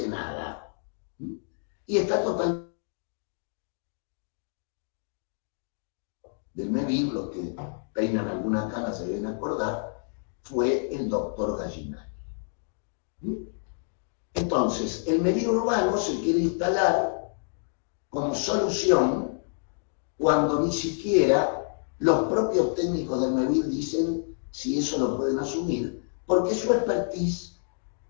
nada. Y está totalmente del MEVIR, los que peinan alguna cana se deben acordar, fue el doctor Gallinari. Entonces, el MEVIR urbano se quiere instalar como solución cuando ni siquiera los propios técnicos del MEVIR dicen si eso lo pueden asumir, porque su expertise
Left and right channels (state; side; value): silent; right; digital silence